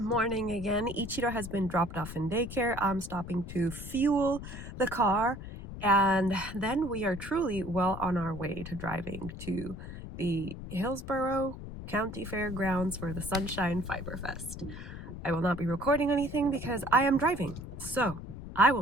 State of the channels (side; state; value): left; noise; rumble, 10 dB below the sound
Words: again. Ichiro has been dropped off in daycare. I'm stopping to fuel the car, and then we are truly well on our way to driving to the Hillsborough County Fairgrounds for the Sunshine Fiber Fest. I will not be recording anything because I am driving, so I